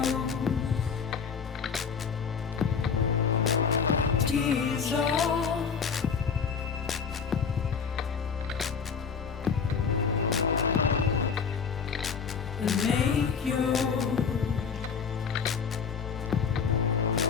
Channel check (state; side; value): quieter; right; 6.2 dB